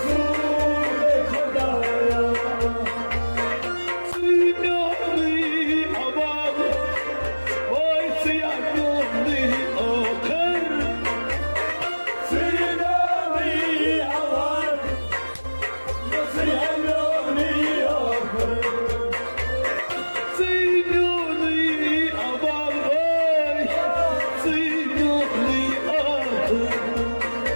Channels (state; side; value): inverted; both; correlation -1.00